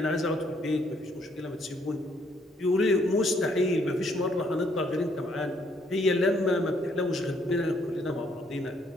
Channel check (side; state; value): both; normal; correlation 0.69